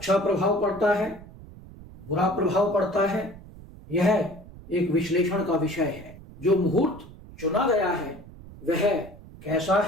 प्रभाव पड़ता है, बुरा प्रभाव पड़ता है, यह एक विश्लेषण का विषय है। जो मुहूर्त चुना गया है वह कैसा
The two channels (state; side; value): noise; right; rumble, 18 dB below the sound